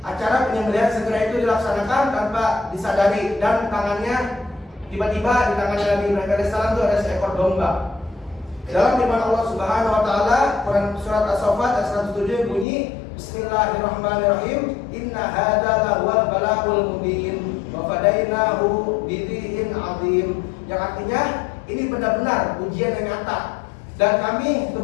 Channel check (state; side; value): drops out; right; at 12.7 s